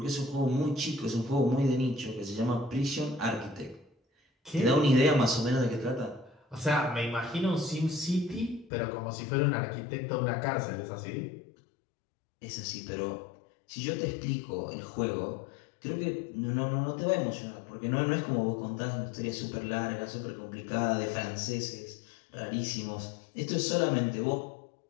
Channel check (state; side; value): drops out; right; at 8.7 s